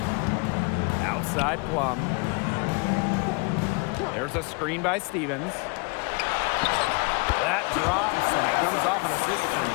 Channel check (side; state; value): right; quieter; 31.5 dB